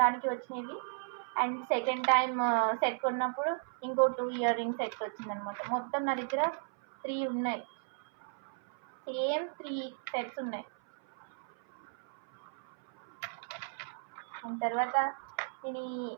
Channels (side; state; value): left; silent; 55 dB below the other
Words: వచ్చినవి. అండ్ సెకండ్ టైం సెట్ కొన్నప్పుడు ఇంకో 2 ఇయర్ రింగ్స్ సెట్ వచ్చిందనమాట. మొత్తం నా దగ్గర 3 ఉన్నాయి, సేమ్ 3 సెట్స్ ఉన్నాయి. అండ్ తర్వాత నేను ఈ